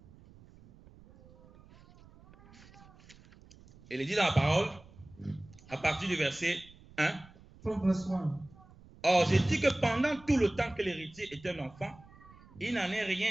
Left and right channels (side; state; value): right; noise; rumble, 23 dB below the sound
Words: Et il dit dans la parole, à partir du verset 1. From verse 1. Or, je dis que pendant tout le temps que l'héritier est un enfant, il n'en est